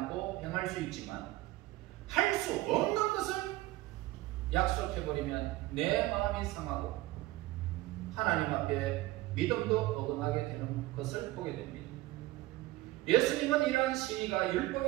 행할 수 있지만, 할 수 없는 것을 약속해버리면 내 마음이 상하고 하나님 앞에 믿음도 어긋나게 되는 것을 보게 됩니다. 예수님은 이러한 시위가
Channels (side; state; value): left; quieter; 18.3 dB